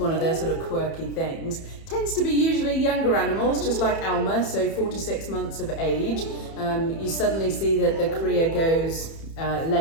of their sort of quirky things. Tends to be usually younger animals, just like Alma, so 4 to 6 months of age. You suddenly see that the Cria goes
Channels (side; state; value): right; late; 30 ms